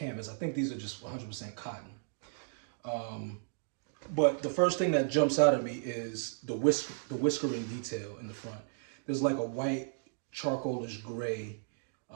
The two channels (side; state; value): left; silent; digital silence